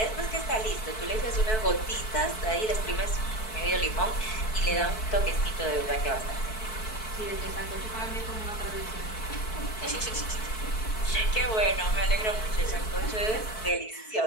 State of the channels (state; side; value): late; right; 4.6 ms